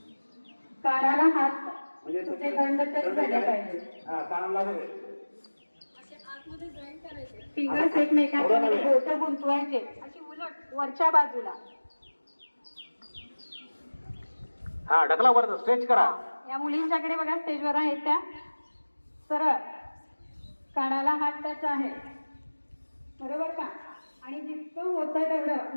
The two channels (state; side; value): inverted; both; correlation -1.00